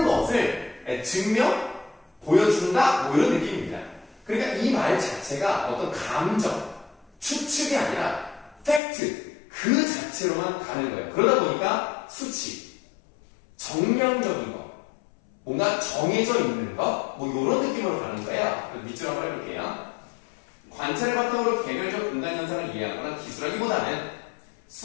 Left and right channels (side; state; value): right; drops out; at 8.8 s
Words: 것을 증명, 보여준다 뭐 이런 느낌입니다. 그러니까 이 말 자체가 어떤 감정, 추측이 아니라 팩트, 그 자체로만 가는 거예요. 그러다 보니까 수치, 정량적인 거, 뭔가 정해져 있는 것, 뭐 이런 느낌으로 가는 거예요. 밑줄 한번 해볼게요. 관찰을 바탕으로 개별적 공간 현상을 이해하거나 기술하기보다는